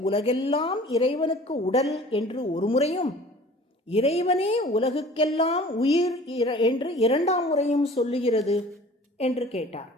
உலகெல்லாம் இறைவனுக்கு உடல் என்று ஒரு முறையும், இறைவனே உலகுக்கெல்லாம் உயிர் என்று 2ஆம் முறையும் சொல்லுகிறது என்று கேட்டார்.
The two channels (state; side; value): normal; both; correlation 0.46